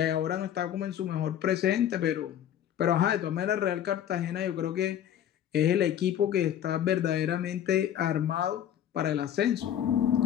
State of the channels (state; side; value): quieter; right; 10.4 dB